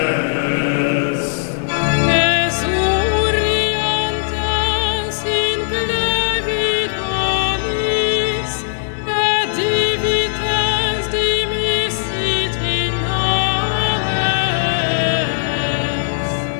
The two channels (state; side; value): silent; right; digital silence